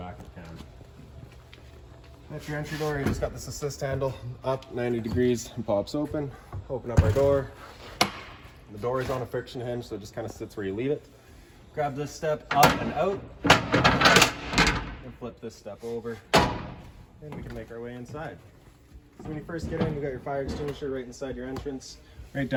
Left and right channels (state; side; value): identical; both; correlation 1.00